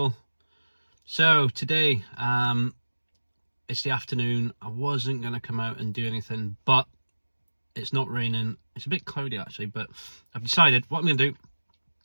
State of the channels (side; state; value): both; inverted; correlation -1.00